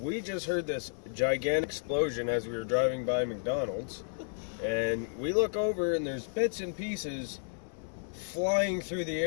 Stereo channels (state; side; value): silent; right; digital silence